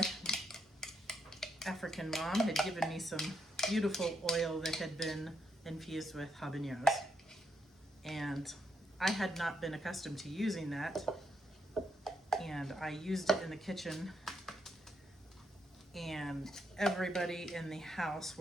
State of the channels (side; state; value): both; normal; correlation 0.78